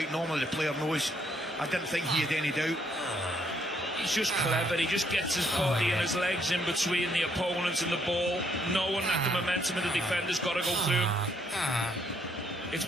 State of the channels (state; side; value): normal; both; correlation 0.70